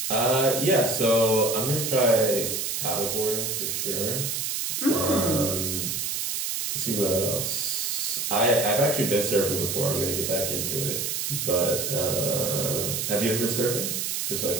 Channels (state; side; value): noise; right; hiss, 1 dB below the sound